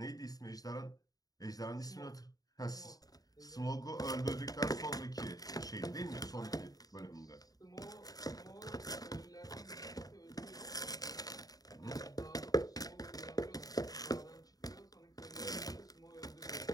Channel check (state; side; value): late; right; 0.18 ms